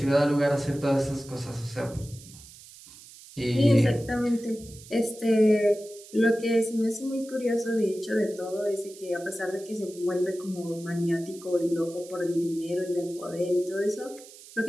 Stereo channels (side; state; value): right; noise; hiss, 19 dB below the sound